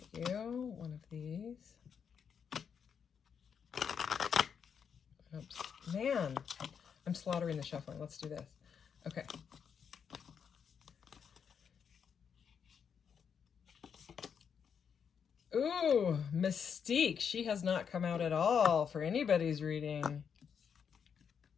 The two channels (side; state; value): right; quieter; 7.1 dB